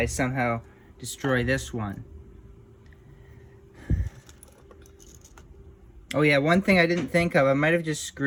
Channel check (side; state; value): both; identical; correlation 1.00